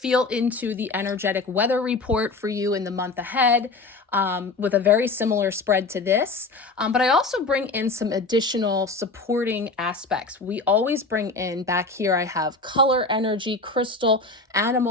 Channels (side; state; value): right; quieter; 3.6 dB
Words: into the energetic weather report for you in the month ahead, with a very similar spread to this. But I also bring in some additional supporting aspects. We always bring in, back here I have color energy, crystal,